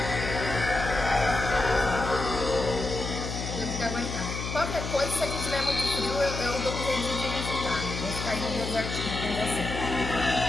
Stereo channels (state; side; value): noise; left; hum, 5 dB below the sound